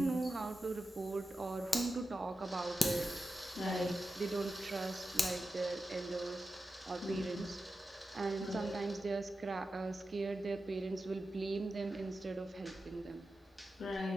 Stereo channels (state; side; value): normal; both; correlation 0.92